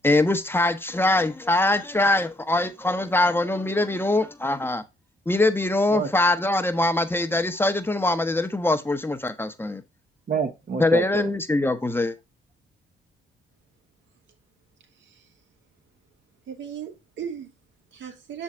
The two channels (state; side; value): normal; both; correlation 0.71